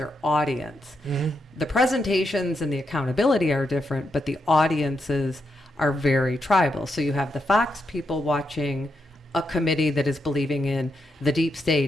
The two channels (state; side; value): normal; both; correlation 0.83